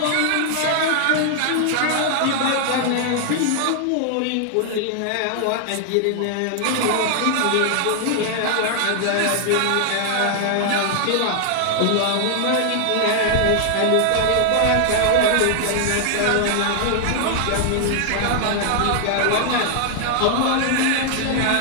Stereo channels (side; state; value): both; different; correlation 0.00